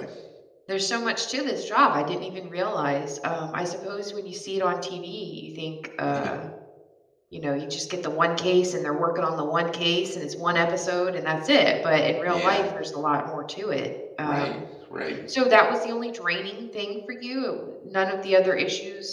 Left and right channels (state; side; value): identical; both; correlation 1.00